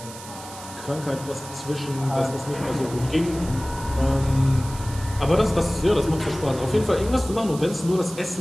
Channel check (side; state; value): right; noise; hiss, 15 dB below the sound